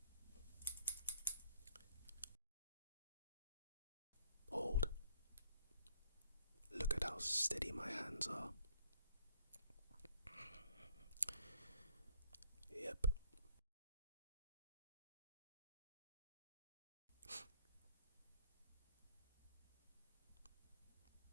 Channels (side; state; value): both; inverted; correlation -0.59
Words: hold. Look at how steady my hands are. Yep.